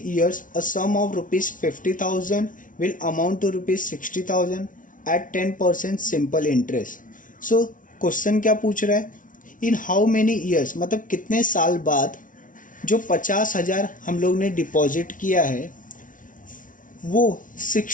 years a sum of ₹50,000 will amount to ₹60,000 at 10% simple interest. So question क्या पूछ रहा है? इन हाउ मेनी ईयर्स मतलब कितने साल बाद जो 50,000 हम लोग ने डिपॉजिट किया है वो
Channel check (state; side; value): late; right; 0.38 ms